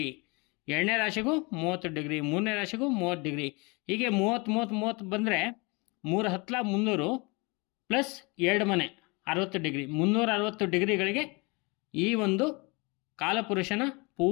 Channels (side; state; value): right; quieter; 28.1 dB